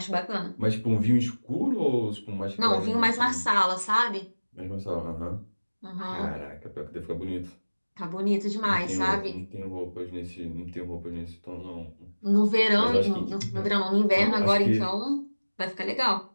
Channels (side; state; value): both; inverted; correlation -1.00